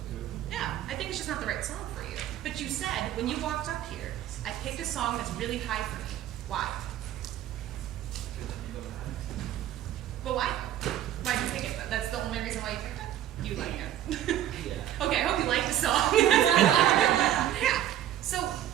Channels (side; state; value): left; quieter; 12.1 dB